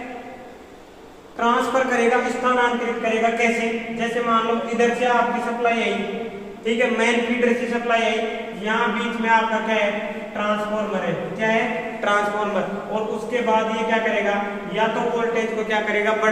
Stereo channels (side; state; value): both; identical; correlation 1.00